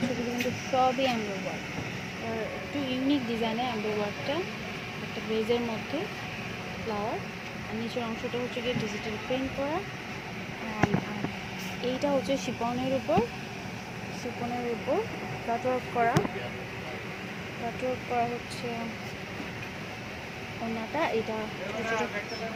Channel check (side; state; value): both; identical; correlation 1.00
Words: এগুলো কিন্তু সবই এমব্রয়ডারি ওয়ার্ক। আর একটু ইউনিক ডিজাইনের এমব্রয়ডারিটা, একটা বেজের মধ্যে ফ্লাওয়ার, আর নিচের অংশটা হচ্ছে গিয়ে ডিজিটাল প্রিন্ট করা। আর এইটা হচ্ছে শিপনের উপর কাটওয়ার্ক করা হচ্ছে ওনাটা। এটা